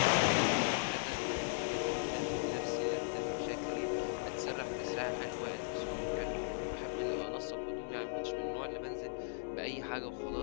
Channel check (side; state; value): right; silent; digital silence